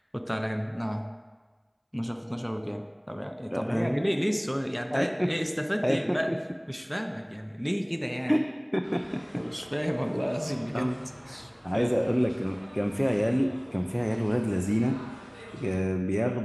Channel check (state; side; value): identical; both; correlation 1.00